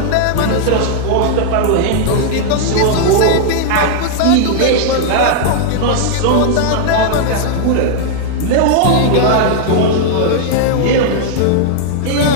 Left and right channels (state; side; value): different; both; correlation -0.01